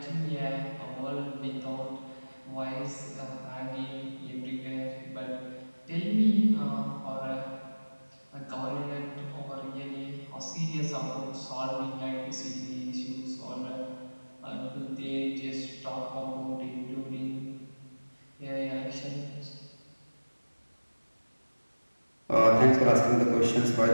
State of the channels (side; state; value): both; inverted; correlation -1.00